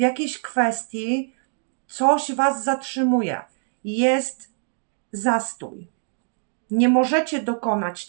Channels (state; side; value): silent; left; digital silence